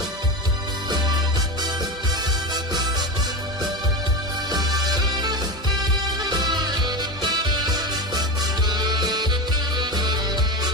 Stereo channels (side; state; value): both; normal; correlation 0.20